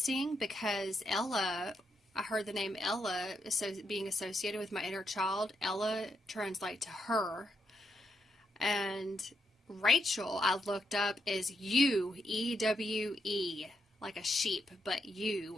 because Ella... I heard the name Ella being associated with my inner child. Ella translates to her. And Rachel, I looked up, is you, E-W-E, like a sheep, but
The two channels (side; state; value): both; normal; correlation 0.80